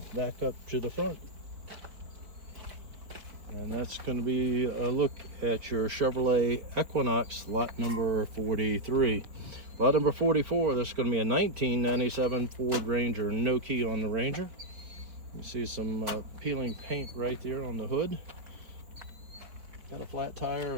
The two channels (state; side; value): late; left; 4.7 ms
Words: back up to the front. And that's going to be a look at your Chevrolet Equinox, lot number 43. Lot number 44, this is going to be a 1997 Ford Ranger, no key on the Ranger. You see some peeling paint right there on the hood. Got a flat tire.